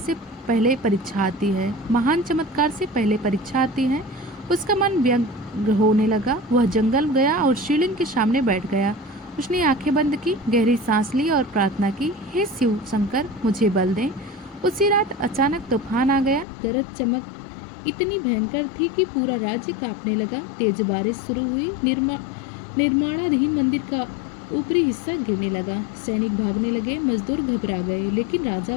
पहले परीक्षा आती है, महान चमत्कार से पहले परीक्षा आती है। उसका मन व्यग्र होने लगा। वह जंगल गया और शिवलिंग के सामने बैठ गया। उसने आंखें बंद की, गहरी सांस ली और प्रार्थना की, हे शिव शंकर, मुझे बल दें। उसी रात अचानक तूफान आ गया। गरज चमक इतनी भयंकर थी कि पूरा राज्य कांपने लगा। तेज बारिश शुरू हुई। निर्माणाधीन मंदिर का ऊपरी हिस्सा गिरने लगा। सैनिक भागने लगे, मजदूर घबरा गए, लेकिन राजा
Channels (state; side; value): drops out; right; at 16.4 s